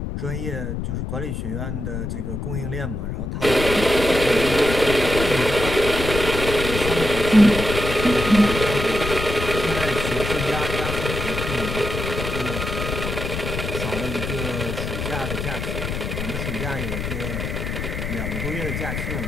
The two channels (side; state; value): left; noise; rumble, 4 dB below the sound